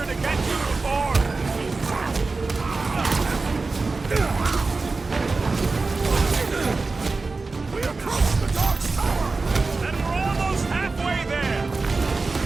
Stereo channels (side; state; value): left; quieter; 3.9 dB